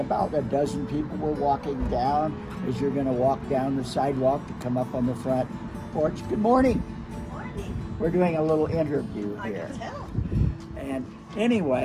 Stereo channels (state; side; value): identical; both; correlation 1.00